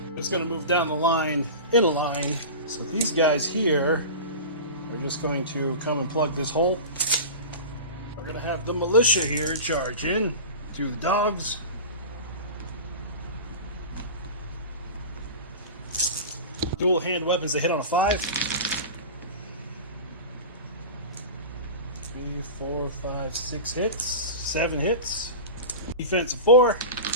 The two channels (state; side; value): inverted; both; correlation -0.30